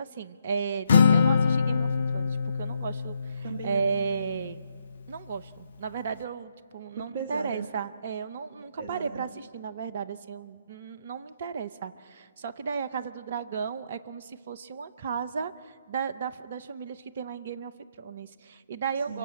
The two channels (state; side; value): inverted; both; correlation -0.76